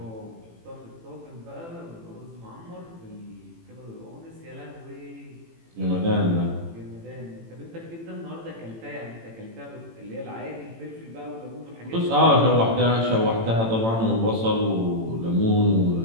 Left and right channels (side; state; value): left; late; 18 ms